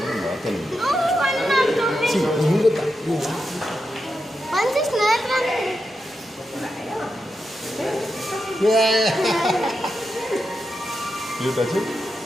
You touch it?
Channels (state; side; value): normal; both; correlation 0.87